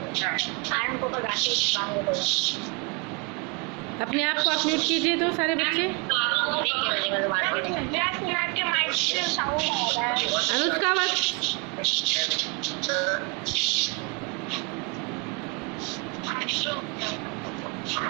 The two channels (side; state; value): left; quieter; 31.4 dB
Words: अपने आप को आप म्यूट कीजिए तो सारे बच्चे। अनुष्का वक्त